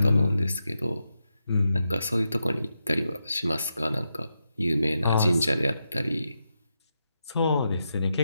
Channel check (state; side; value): inverted; both; correlation -0.86